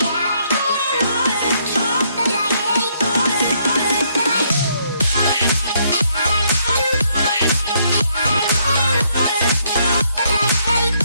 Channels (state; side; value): inverted; both; correlation -0.71